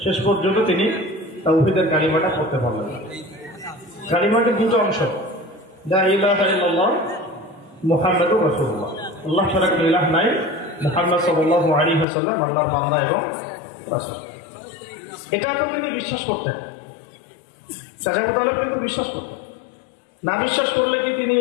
শেষ পর্যন্ত তিনি তাওহীদের কালিমাটা পড়তে পারলেন। কালিমাটির দুটো অংশ, লা ইলাহা ইল্লাল্লাহ মুহাম্মাদুর রাসূলুল্লাহ, আল্লাহ ছাড়া কোনো ইলাহ নাই, মুহাম্মদ সাল্লাল্লাহু আলাইহি ওয়াসাল্লাম আল্লাহর বান্দা এবং রাসূল। এটা তো তিনি বিশ্বাস করতেন, চাচা আবু তালেব কিন্তু বিশ্বাস করতেন। না বিশ্বাস করলে কি তিনি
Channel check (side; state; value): right; drops out; at 12.1 s